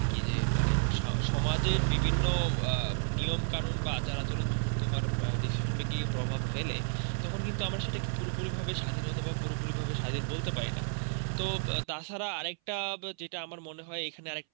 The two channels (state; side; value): silent; left; 56 dB below the other